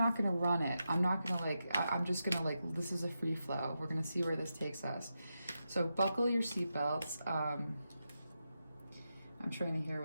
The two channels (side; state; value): both; inverted; correlation -0.88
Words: going to run it. I'm not going to I'm just going to this is a free flow. We're going to see where this takes us. So buckle your seatbelts. I'm trying to hear